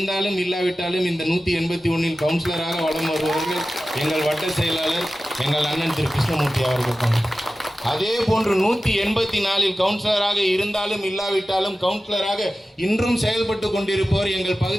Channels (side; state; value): both; normal; correlation 0.95